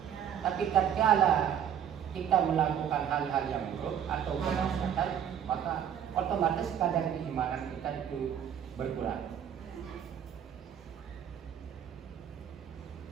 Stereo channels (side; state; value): left; quieter; 9.0 dB